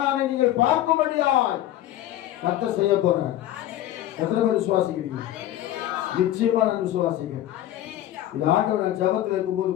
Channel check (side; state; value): right; quieter; 13.3 dB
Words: நீங்கள் பார்க்கும்படியாய் கர்த்தர் செய்ய போறார். எத்தனை பேர் விசுவாசிக்கிறீங்க? நிச்சயமா நான் விசுவாசிக்கிறேன். இது ஆண்டவர் ஜபத்தில் இருக்கும்போது